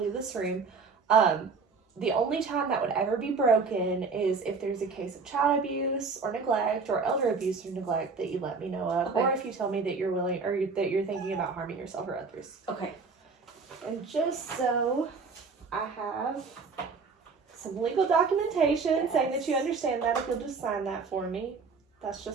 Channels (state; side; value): quieter; left; 4.8 dB